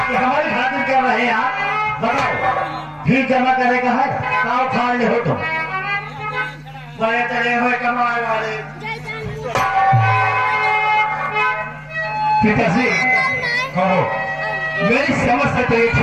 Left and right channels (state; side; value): identical; both; correlation 1.00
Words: ये हमारी खातिर कर रहे हैं आप, बताओ फीस जमा करेगा है, काव खा ले हो तुम, बड़े चले हुए कमाए वाले। पिताजी कहो, मेरी समझ से तो ये